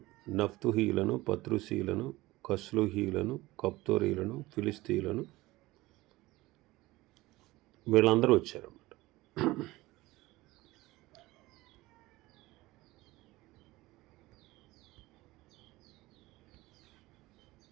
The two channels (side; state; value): left; quieter; 19.2 dB